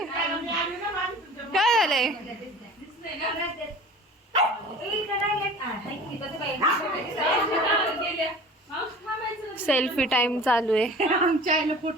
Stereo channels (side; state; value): both; normal; correlation 0.41